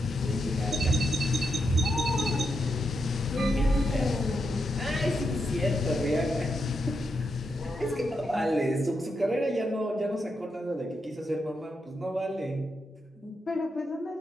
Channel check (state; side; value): normal; both; correlation 0.84